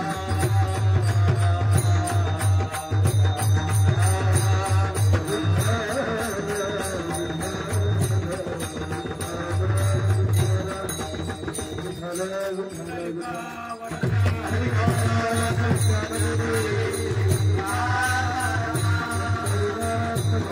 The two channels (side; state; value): both; identical; correlation 1.00